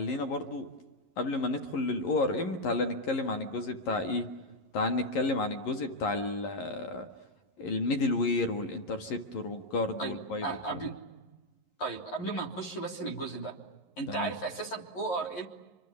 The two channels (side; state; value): right; late; 11 ms